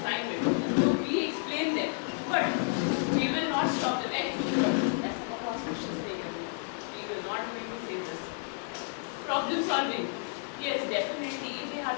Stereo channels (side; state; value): right; silent; 57 dB below the other